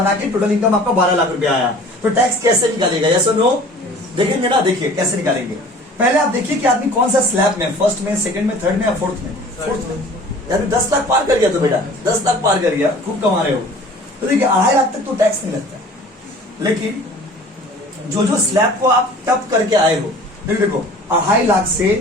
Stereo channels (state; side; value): normal; both; correlation 0.46